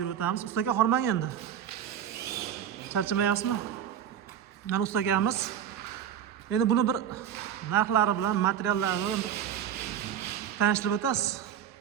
o'tamiz. Ustaga hormang endi. Charchamayapsizmi? Mana ustagamiz. Endi buni bir narxlari bilan, materiallari bilan tanishtirib o'tasiz.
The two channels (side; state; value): left; quieter; 9.6 dB